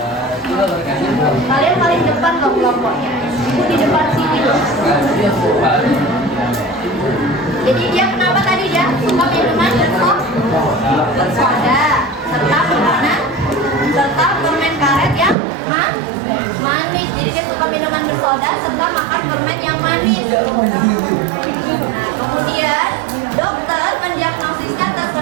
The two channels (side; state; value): left; drops out; at 15.4 s